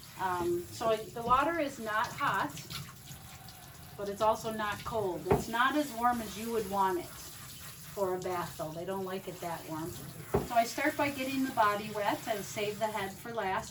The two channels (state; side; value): identical; both; correlation 1.00